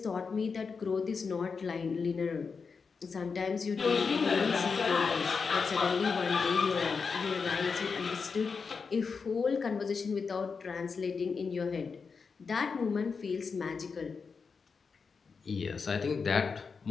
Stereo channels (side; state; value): right; quieter; 5.2 dB